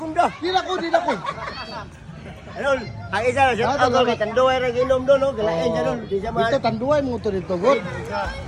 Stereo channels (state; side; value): identical; both; correlation 1.00